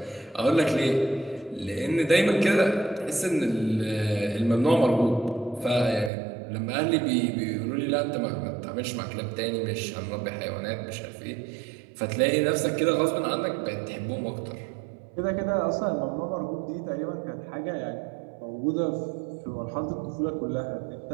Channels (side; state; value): left; drops out; at 6.1 s